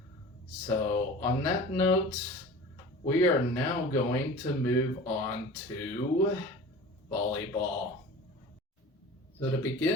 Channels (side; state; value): both; normal; correlation 0.38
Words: So on that note, we are now going to move on to volleyball. So to